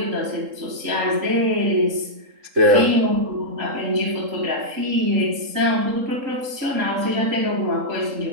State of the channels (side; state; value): left; late; 3.7 ms